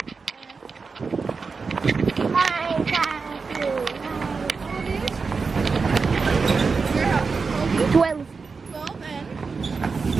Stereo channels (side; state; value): left; quieter; 4.8 dB